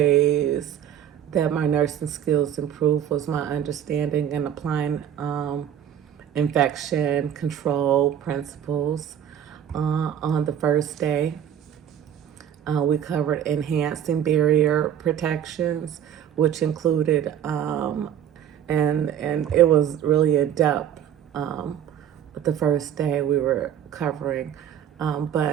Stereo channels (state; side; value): quieter; left; 9.7 dB